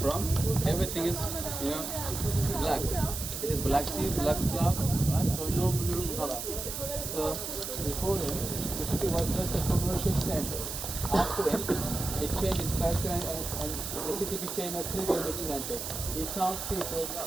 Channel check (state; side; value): noise; right; hiss, 5 dB below the sound